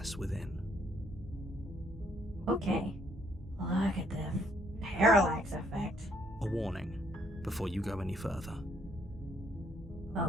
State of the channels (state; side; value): normal; both; correlation 0.69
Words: within. Okay. Look at the parallax effect. A warning before you go any further.